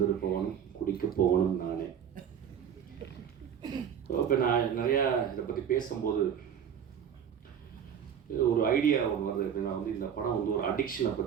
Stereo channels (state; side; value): quieter; left; 8.4 dB